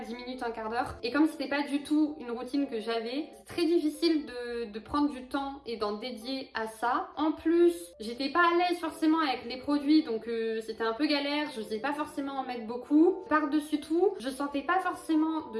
minutes, un quart d'heure. Et comme c'était pas du tout une routine que j'avais, c'est très difficile de prendre du temps et d'en dédier à ça. En plus, j'étais pas à l'aise forcément avec les produits, donc c'était un peu galère, je sais pas forcément en mettre beaucoup. Par-dessus tout, je sentais pas forcément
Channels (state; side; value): identical; both; correlation 1.00